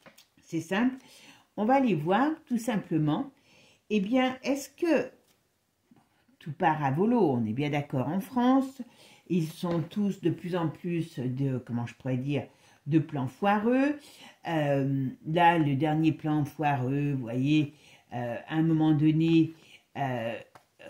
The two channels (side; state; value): both; identical; correlation 1.00